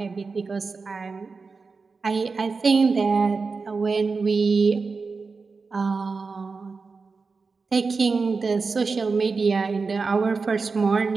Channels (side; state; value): left; quieter; 4.5 dB